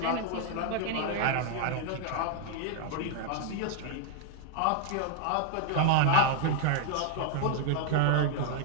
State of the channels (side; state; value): both; different; correlation 0.00